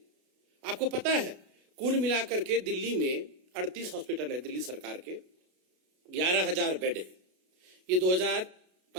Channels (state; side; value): late; left; 33 ms